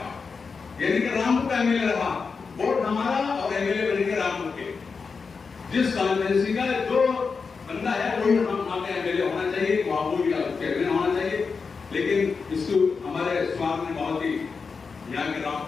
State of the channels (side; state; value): right; quieter; 5.1 dB